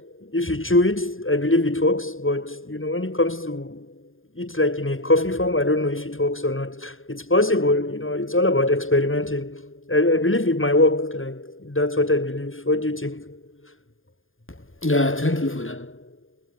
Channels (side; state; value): right; late; 0.59 ms